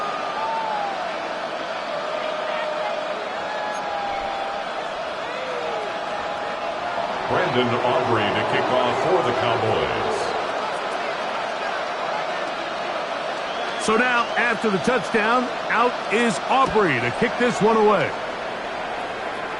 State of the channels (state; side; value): identical; both; correlation 1.00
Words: Brandon Aubrey to kick off for the Cowboys. So now, after the touchdown, out is Aubrey to kick this one away.